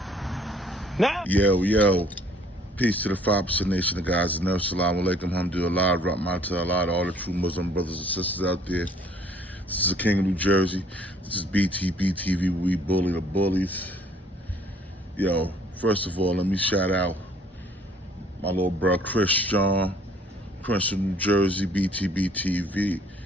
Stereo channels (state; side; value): normal; both; correlation 0.59